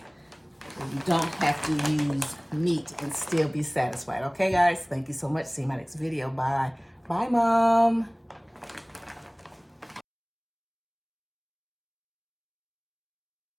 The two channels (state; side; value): identical; both; correlation 1.00